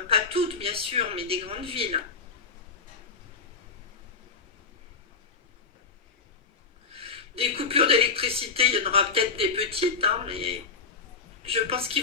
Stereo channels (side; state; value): right; quieter; 5.0 dB